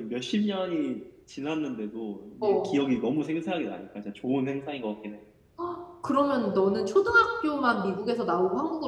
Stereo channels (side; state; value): both; identical; correlation 1.00